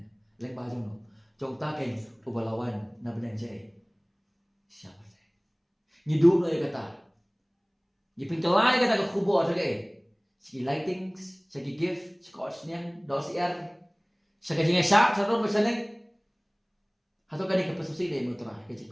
Leng ba jong no. Jong ta ken ubalawan na benang je. Siapa se. Ni du no kata. Ni pengkelai kata ka kubo ta ke. Segi lightings, segi gift, scotch niang, dos sa kajing syak, sa ron berseneng. Hato kani ka pasusi de motora ka jing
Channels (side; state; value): both; identical; correlation 1.00